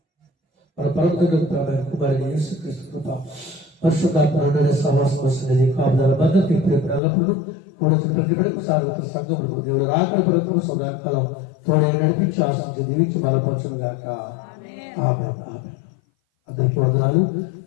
మన ప్రభుత్వ కుమారుని యేసుక్రీస్తు కృప, పరిశుద్ధాత్మ సహవాసం వస్తున్నది, కాపుదల భద్రత ఇప్పుడు ఎల్లప్పుడూ కూడా ప్రతి బిడ్డకు సార్వత్ర సంఘములకు దేవుడు రాకడ ప్రభుత్వం సదాకాలం తోడే నడిపించి ఆశించి దీవించి బలపరచును గాక. ఆమేన్. అందరికీ వందనాలు.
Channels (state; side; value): drops out; right; at 7.0 s